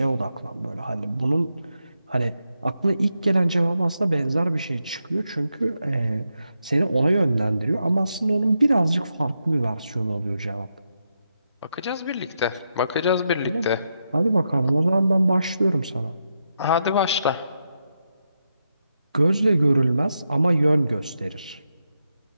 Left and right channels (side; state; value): both; inverted; correlation -0.84